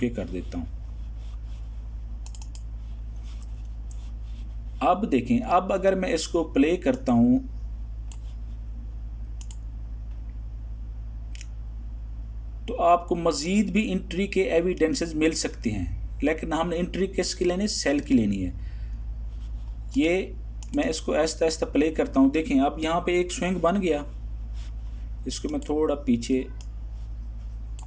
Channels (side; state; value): both; identical; correlation 1.00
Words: कर देता हूँ। अब देखें, अब अगर मैं इसको प्ले करता हूँ तो आपको मज़ीद भी एंट्री के एविडेंसेस मिल सकते हैं, लेकिन हमने एंट्री किसकी लेनी है? सेल की लेनी है। ये मैं इसको आहिस्ता आहिस्ता प्ले करता हूँ। देखें अब यहाँ पे एक स्विंग बन गया, इसको मैं थोड़ा पीछे,